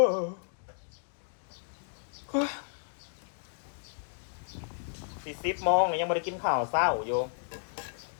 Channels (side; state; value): right; silent; digital silence